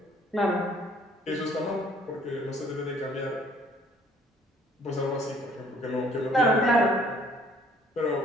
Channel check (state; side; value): normal; both; correlation 0.60